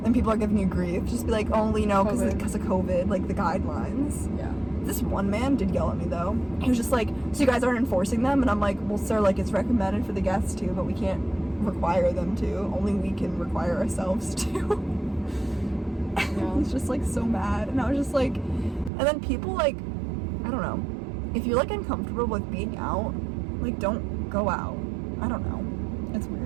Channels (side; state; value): left; drops out; at 18.9 s